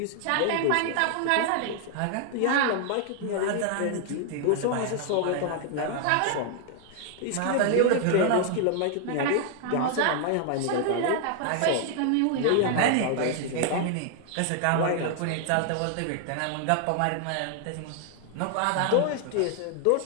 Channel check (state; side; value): different; both; correlation 0.00